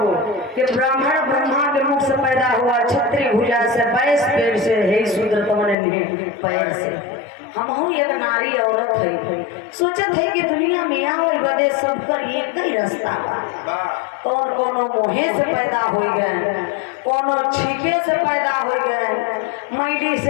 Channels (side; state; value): right; drops out; at 5.8 s